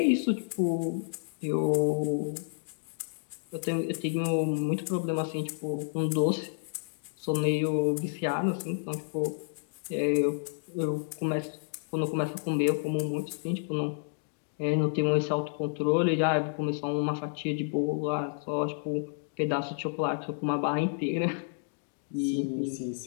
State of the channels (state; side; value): silent; right; digital silence